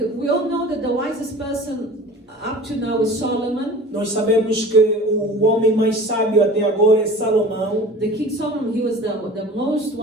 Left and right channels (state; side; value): normal; both; correlation 0.41